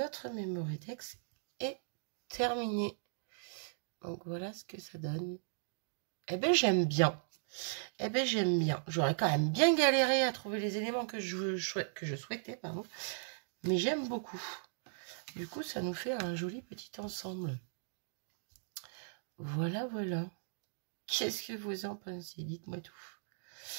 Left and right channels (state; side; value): silent; left; digital silence